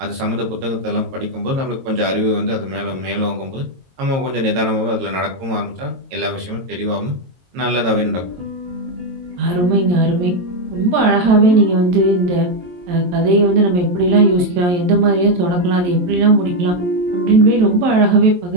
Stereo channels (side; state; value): left; late; 22 ms